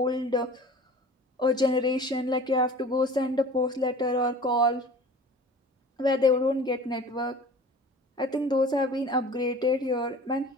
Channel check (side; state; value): both; normal; correlation 0.42